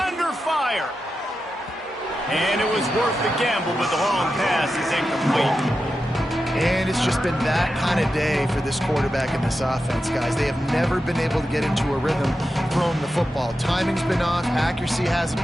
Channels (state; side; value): normal; both; correlation 0.90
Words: fire. And it was worth the gamble, but the long pass is incomplete. And it's just been that kind of day for this quarterback and this offense, guys. They have never been able to get into a rhythm throwing the football. Timing's been off. Accuracy hasn't